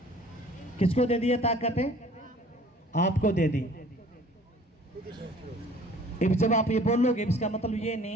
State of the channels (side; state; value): both; normal; correlation 0.51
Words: किसको दे दी ये ताकत? आपको दे दी। अब जब आप ये बोलोगे, इसका मतलब ये